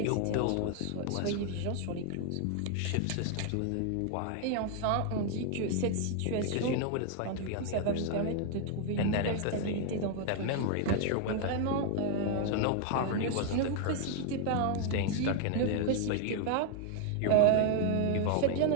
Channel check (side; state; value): both; different; correlation 0.00